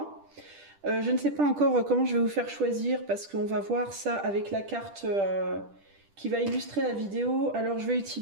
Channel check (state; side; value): late; left; 10 ms